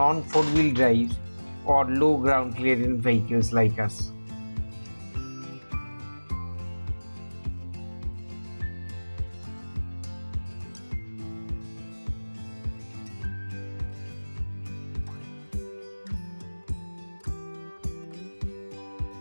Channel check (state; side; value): inverted; both; correlation -1.00